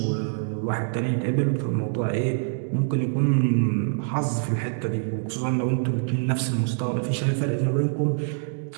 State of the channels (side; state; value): left; silent; digital silence